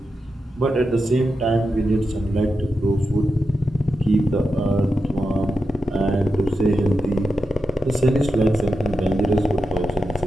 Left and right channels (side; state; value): both; normal; correlation 0.89